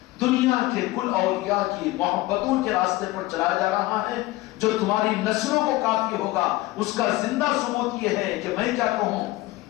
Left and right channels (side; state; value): right; quieter; 18.6 dB